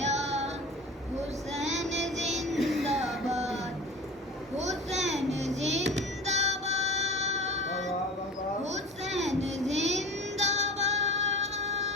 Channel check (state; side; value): normal; both; correlation 0.36